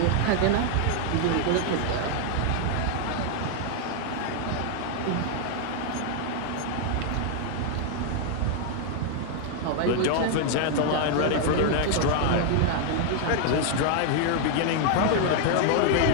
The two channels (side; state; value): both; different; correlation 0.00